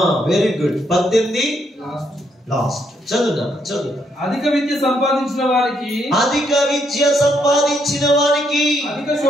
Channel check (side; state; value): both; normal; correlation 0.74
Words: వెరీ గుడ్ 18 లాస్ట్. చదువునా? అధిక విద్య సంపాదించిన వారికి అధిక